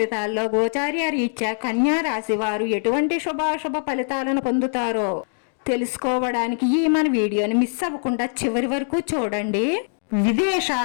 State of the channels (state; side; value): silent; right; digital silence